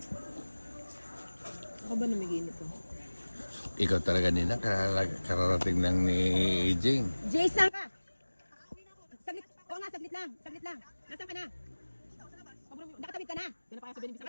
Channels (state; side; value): inverted; both; correlation -1.00